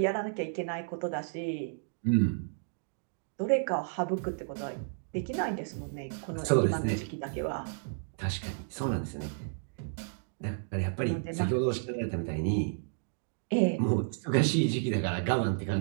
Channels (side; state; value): left; silent; digital silence